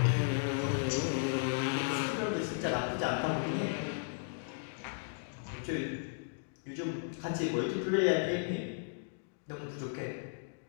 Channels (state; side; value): silent; right; digital silence